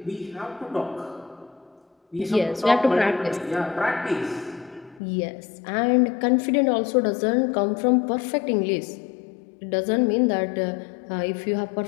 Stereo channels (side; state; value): right; drops out; at 5.0 s